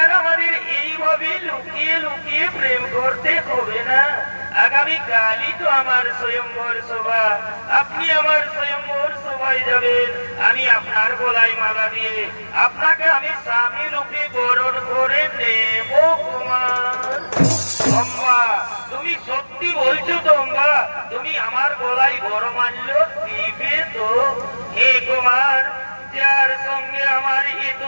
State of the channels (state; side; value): inverted; both; correlation -1.00